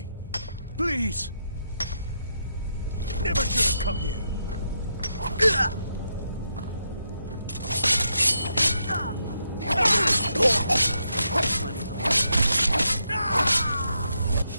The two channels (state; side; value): inverted; both; correlation -0.81